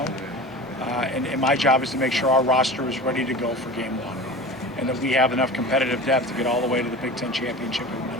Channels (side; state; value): both; normal; correlation 0.34